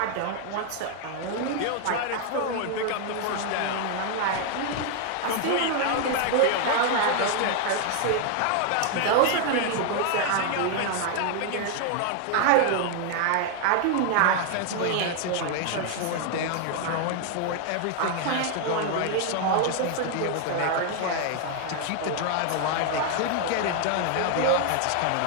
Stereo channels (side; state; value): both; different; correlation 0.00